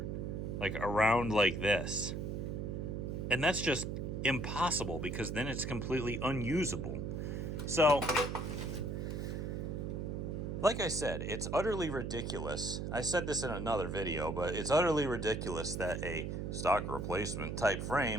like around like this. And that's just impossible, because then it's completely unusable. So, like I said, it's utterly ridiculous. I said this in another video, but it's utterly ridiculous that a stock replacement type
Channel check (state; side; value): noise; right; hum, 3 dB below the sound